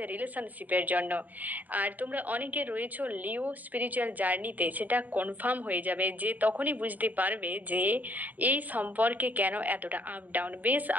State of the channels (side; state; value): left; late; 0.081 ms